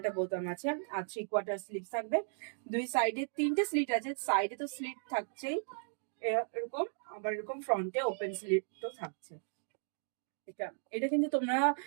একটা বোতাম আছে, আর 3/4 স্লিভ থাকবে। দুই সাইডে 3টে স্লিট আছে, সাইডে তো স্লিট থাকছেই এরকম, আবার এরকম ফ্রন্টে ওপেন স্লিট তো থাকছে। এটা এটা কিন্তু তোমরা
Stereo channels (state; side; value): silent; left; digital silence